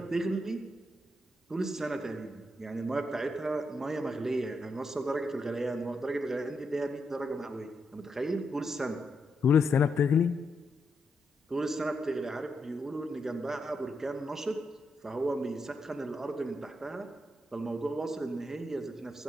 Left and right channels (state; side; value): normal; both; correlation 0.82